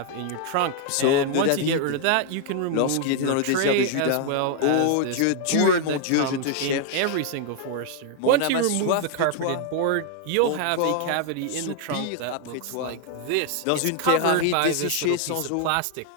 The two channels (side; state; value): both; different; correlation 0.00